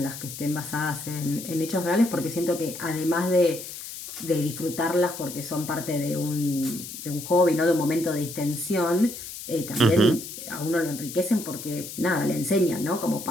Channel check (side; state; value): left; noise; hiss, 10 dB below the sound